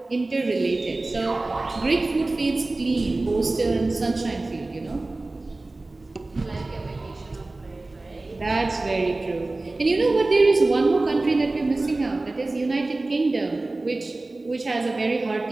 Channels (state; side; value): quieter; left; 3.0 dB